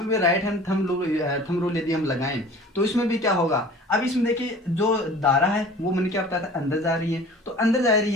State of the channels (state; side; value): normal; both; correlation 0.44